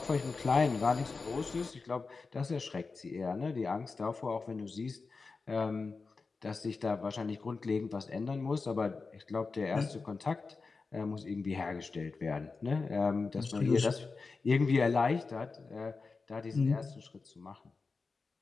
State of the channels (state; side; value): quieter; right; 4.3 dB